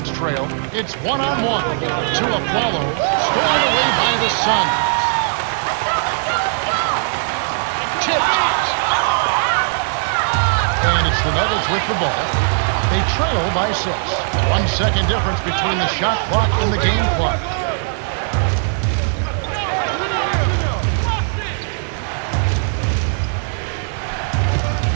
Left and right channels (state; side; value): silent; left; digital silence